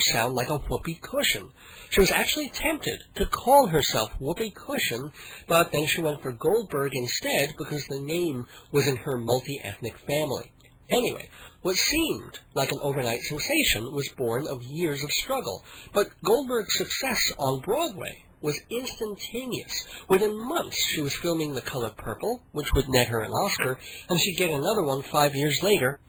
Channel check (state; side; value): identical; both; correlation 1.00